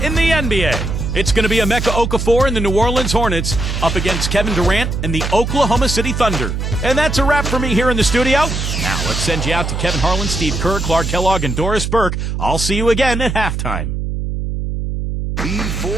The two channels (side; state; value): right; noise; hum, 3 dB below the sound